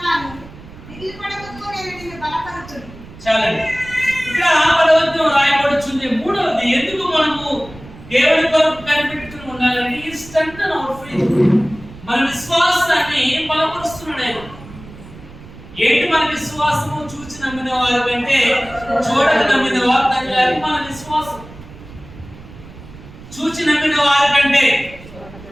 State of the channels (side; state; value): right; noise; rumble, 18 dB below the sound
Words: దిగులుపడకుము, నేను నిన్ను బలపరచును. చాలండి. ఇక్కడ 10వ రాయబడుతుంది. మూడవది, ఎందుకు మనము దేవుని కొరకు కనిపెట్టుకుని ఉండాలంటే ఈ స్ట్రెంగ్తెన్ అవర్ ఫెయిత్. మన విశ్వాసాన్ని బలపరుస్తున్నాడు ఆయన. ఏంటి మన విశ్వాసము? చూచి నమ్మిన వారి కంటే చూడక నమ్మిన వారు తగ్గాలి. మన విశ్వాసం చూచి నమ్మిన వారి కంటే.